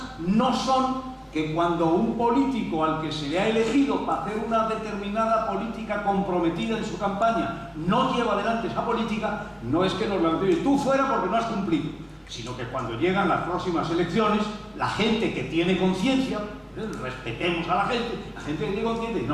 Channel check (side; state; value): both; identical; correlation 1.00